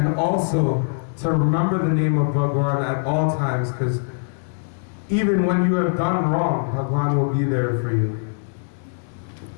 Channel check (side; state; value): right; silent; digital silence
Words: also to remember the name of Bhagwan at all times, because even when you have done wrong, Bhagwan will be there for you.